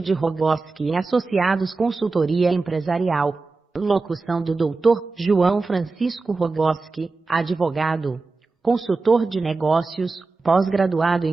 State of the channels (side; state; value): left; quieter; 3.8 dB